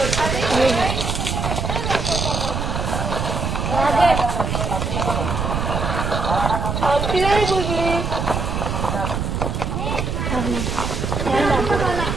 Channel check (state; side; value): noise; right; rumble, 2 dB below the sound